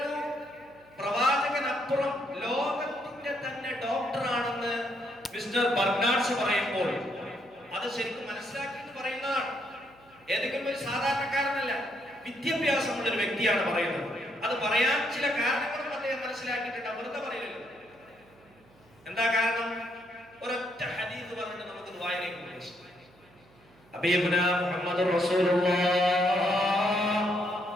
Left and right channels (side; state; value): right; noise; hum, 29 dB below the sound